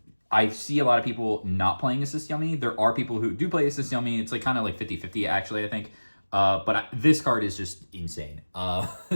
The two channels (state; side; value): inverted; both; correlation -1.00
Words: I see a lot of people not playing Assist Yummy. There are people who do play Assist Yummy. It's like kind of like 50-50 actually, I think. But this card is just insane.